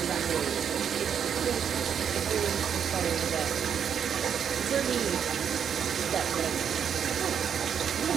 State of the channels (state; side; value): quieter; left; 8.0 dB